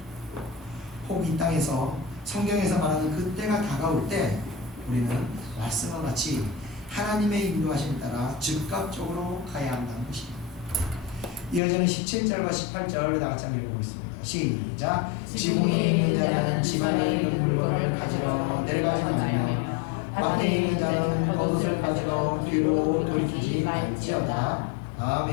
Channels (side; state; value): right; drops out; at 11.6 s